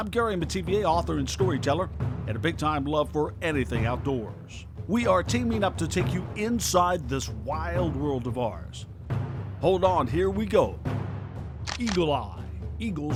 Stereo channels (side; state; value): both; identical; correlation 1.00